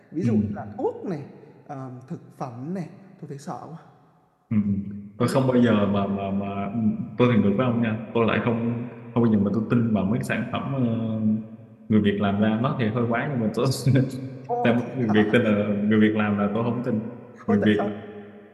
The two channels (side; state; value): both; identical; correlation 1.00